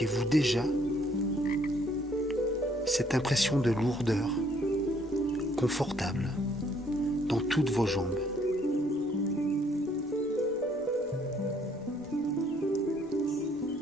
déjà cette impression de lourdeur confortable dans toutes vos jambes.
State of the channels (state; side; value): normal; both; correlation 0.65